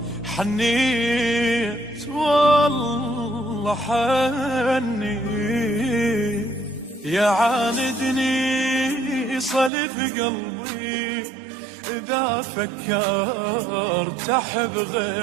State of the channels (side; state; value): left; drops out; at 9.7 s